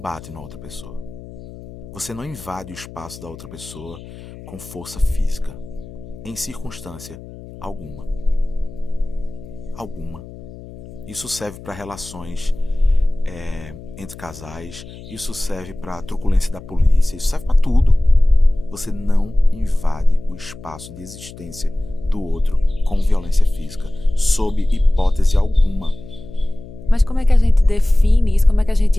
na outra pessoa. Você não invade o espaço da outra pessoa com força física. Em circunstância alguma. Alguma. Isso serve para relações entre casais. Isso serve para truculência da polícia. Isso serve para tudo. Você não invade o espaço de existência do outro com violência física, sob hipótese alguma. Mas como é que a gente define isso? Como é que a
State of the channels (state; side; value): noise; left; hum, 16 dB below the sound